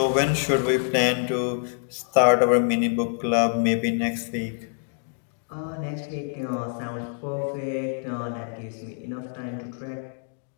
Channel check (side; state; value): right; silent; digital silence